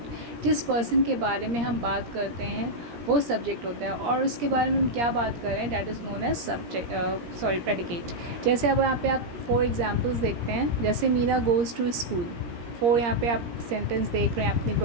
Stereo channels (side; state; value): left; late; 17 ms